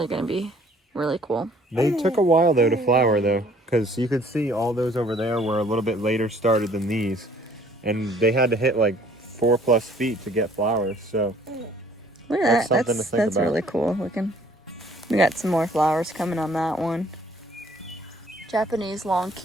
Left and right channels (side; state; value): both; normal; correlation 0.58